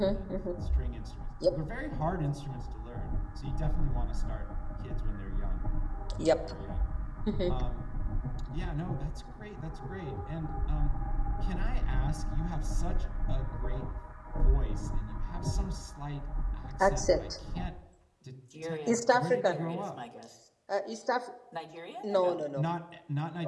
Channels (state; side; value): identical; both; correlation 1.00